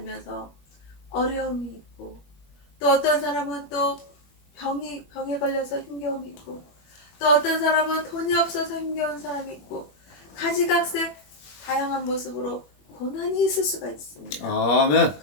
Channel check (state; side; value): late; right; 21 ms